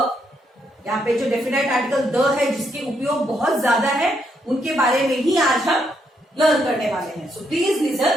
यहाँ पे जो डेफिनाइट आर्टिकल द है जिसके उपयोग बहुत ज्यादा है उनके बारे में ही आज हम लर्न करने वाले हैं. So please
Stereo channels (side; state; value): both; normal; correlation 0.76